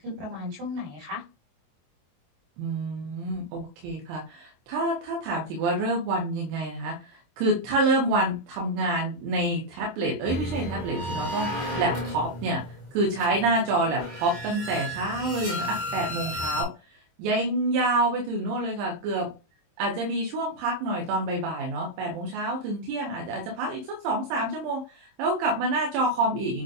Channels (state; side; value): late; left; 23 ms